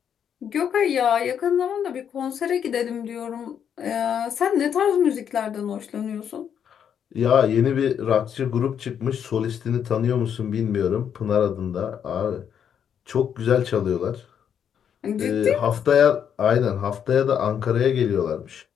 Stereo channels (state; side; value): quieter; right; 8.4 dB